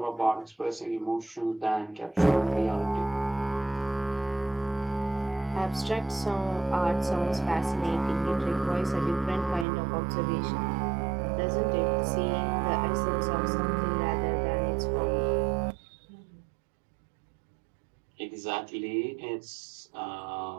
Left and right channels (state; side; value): drops out; left; at 9.7 s